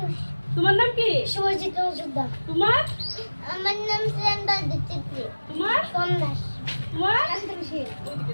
তোমার নাম কি? শুভজিৎ মজুমদার। তোমার? আমার নাম শ্রেন্দা দিতেছি। তোমার? সোমনাথ। তোমার?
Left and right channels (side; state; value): both; inverted; correlation -1.00